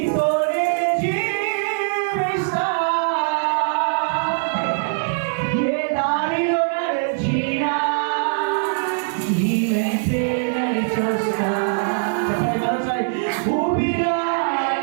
జీవిస్తా, ఏ దారిలో నడిచినా నీ వెంటే నడిచొస్తా. చెప్పండి మరోసారి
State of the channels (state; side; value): silent; left; digital silence